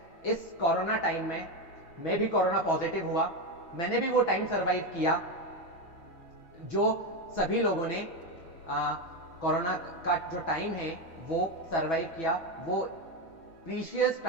इस कोरोना टाइम में मैं भी कोरोना पॉजिटिव हुआ। मैंने भी वो टाइम सरवाइव किया जो सभी लोगों ने कोरोना का जो टाइम है वो सरवाइव किया। वो प्रीशियस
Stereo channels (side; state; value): right; late; 6.1 ms